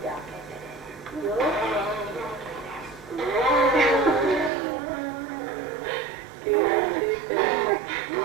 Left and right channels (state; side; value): drops out; left; at 4.5 s